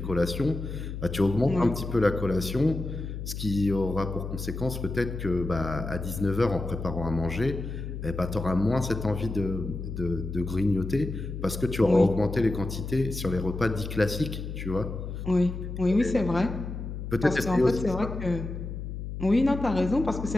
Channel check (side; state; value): left; noise; hum, 7 dB below the sound